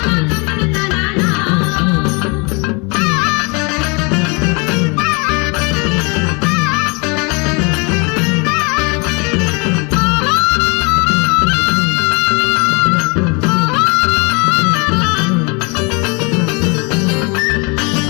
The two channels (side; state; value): right; quieter; 30.9 dB